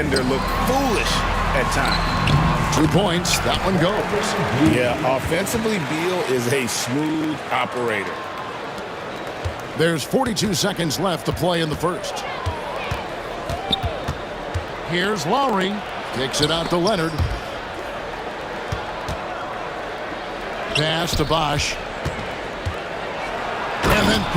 look foolish at times. 2 points. That one goes. Yeah, offensively, Beal is a smooth operator. There's 42 seconds left to play in the first. Here's Lowry. Kicks it out to Leonard. Pass to Bosh. And And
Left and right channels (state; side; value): identical; both; correlation 1.00